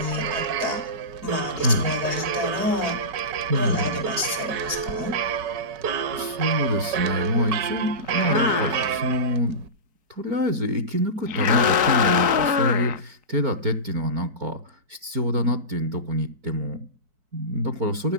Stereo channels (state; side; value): late; left; 4.6 ms